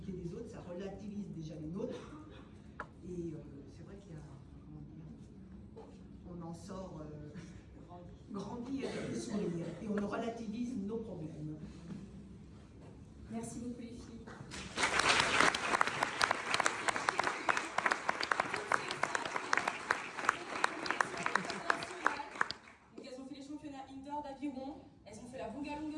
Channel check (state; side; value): identical; both; correlation 1.00